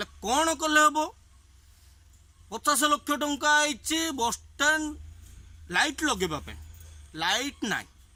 कौन कले हबो 50 लाख टंका आइछि बस स्टैंड लाइट लगेबा पई लाइट नाही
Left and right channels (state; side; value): identical; both; correlation 1.00